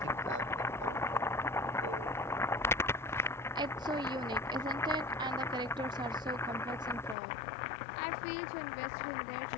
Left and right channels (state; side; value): drops out; right; at 7.2 s